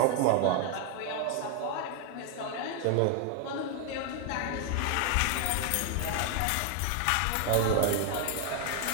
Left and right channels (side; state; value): both; different; correlation 0.00